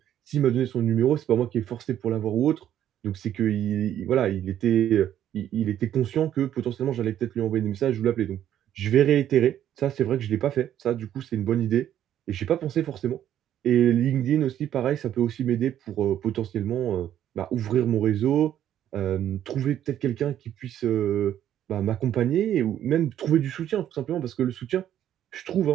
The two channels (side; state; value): left; quieter; 11.0 dB